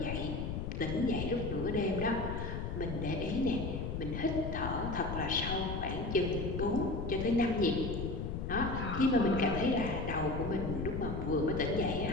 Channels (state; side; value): noise; left; rumble, 4 dB below the sound